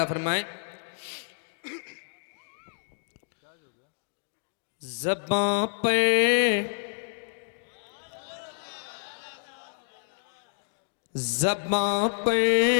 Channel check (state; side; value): silent; right; digital silence